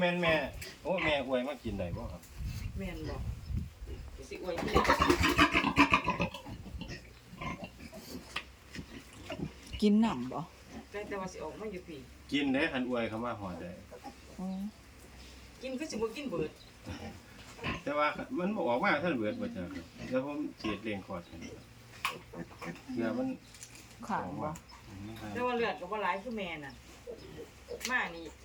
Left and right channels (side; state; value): both; identical; correlation 1.00